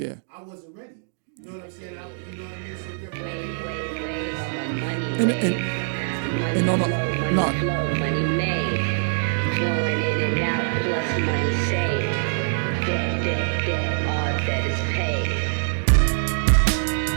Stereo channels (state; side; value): silent; left; digital silence